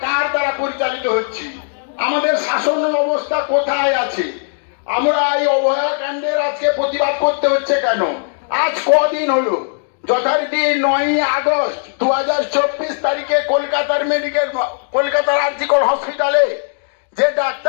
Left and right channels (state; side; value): silent; right; digital silence